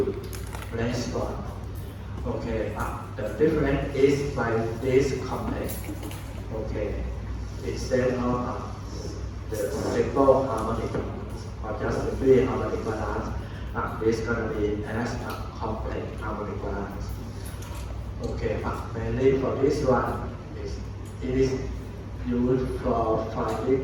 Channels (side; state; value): both; identical; correlation 1.00